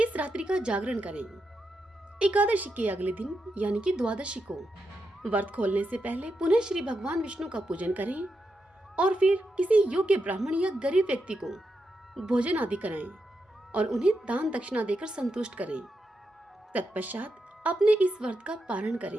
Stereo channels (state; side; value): normal; both; correlation 0.85